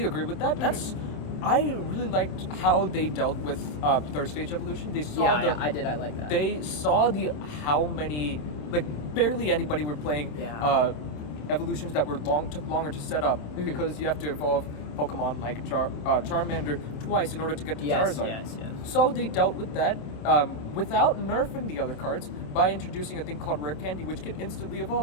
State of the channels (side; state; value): right; late; 27 ms